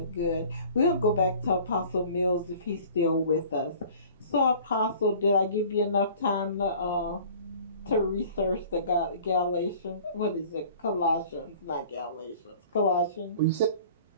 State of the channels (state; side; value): inverted; both; correlation -0.48